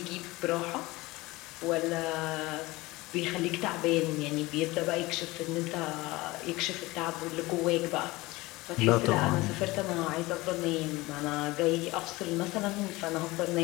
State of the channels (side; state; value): right; quieter; 20.9 dB